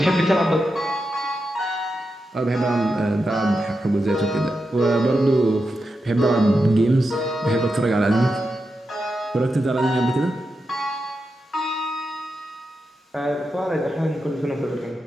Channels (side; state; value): both; normal; correlation 0.88